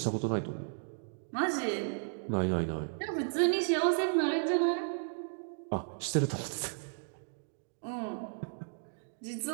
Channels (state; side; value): silent; left; digital silence